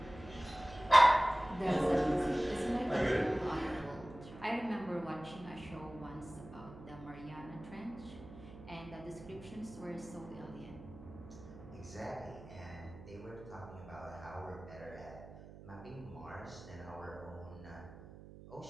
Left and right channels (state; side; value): noise; right; hum, 16 dB below the sound